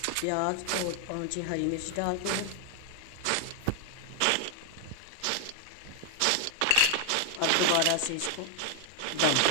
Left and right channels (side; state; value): both; different; correlation 0.00